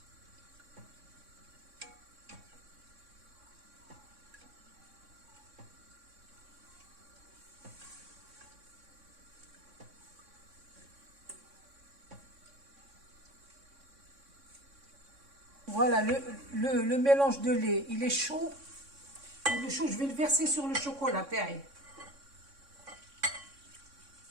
Voilà, le mélange de lait, il est chaud. Il est chaud, je vais le verser sur le chocolat, pareil.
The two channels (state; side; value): late; left; 3.6 ms